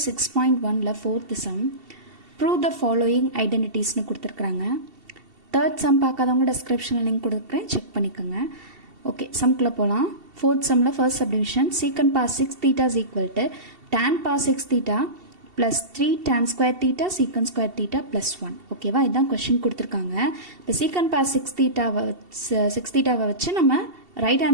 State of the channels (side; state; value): left; late; 2.7 ms